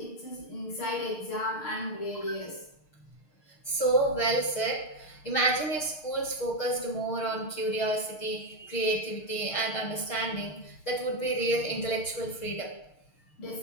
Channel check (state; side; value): late; right; 6.6 ms